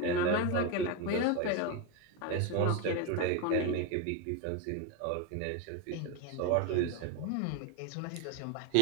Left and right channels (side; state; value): both; different; correlation 0.02